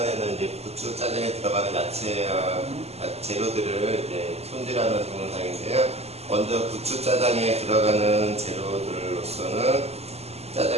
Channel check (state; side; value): late; left; 0.30 ms